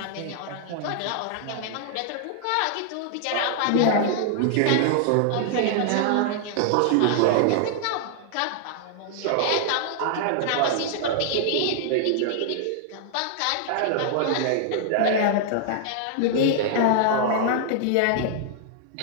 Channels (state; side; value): different; both; correlation -0.01